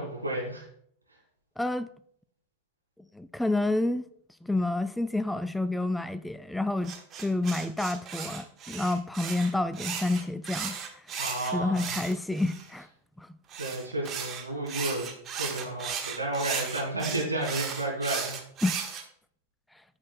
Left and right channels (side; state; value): both; normal; correlation 0.53